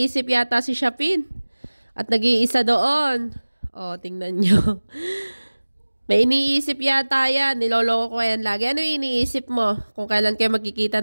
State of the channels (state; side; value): inverted; both; correlation -1.00